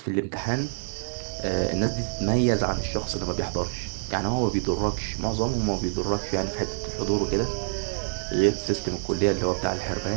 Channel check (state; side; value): silent; left; 60 dB below the other